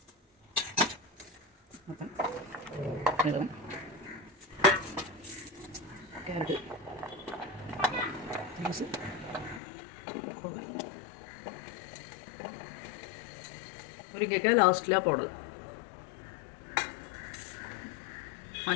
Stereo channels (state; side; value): drops out; right; at 9.6 s